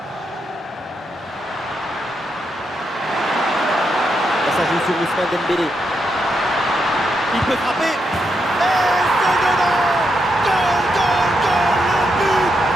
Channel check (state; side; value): normal; both; correlation 0.82